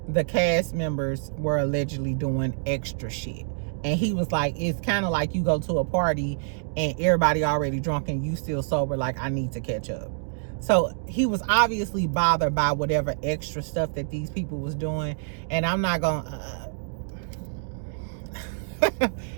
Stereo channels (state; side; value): silent; left; digital silence